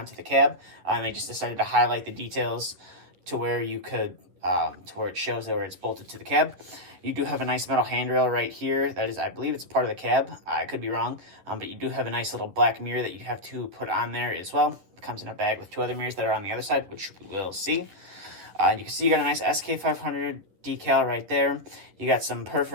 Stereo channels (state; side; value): late; left; 10 ms